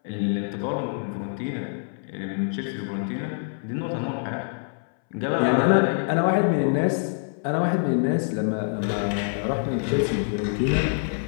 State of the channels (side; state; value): right; silent; 61 dB below the other